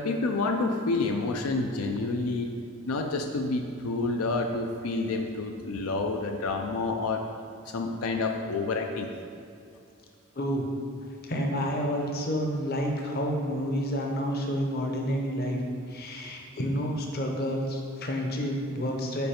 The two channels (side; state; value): both; normal; correlation 0.38